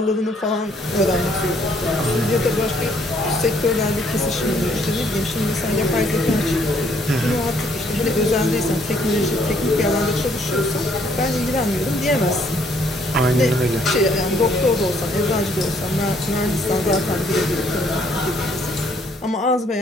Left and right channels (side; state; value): both; normal; correlation 0.66